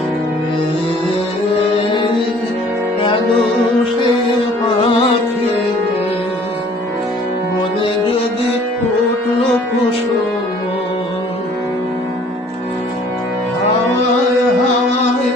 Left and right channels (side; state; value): both; normal; correlation 0.55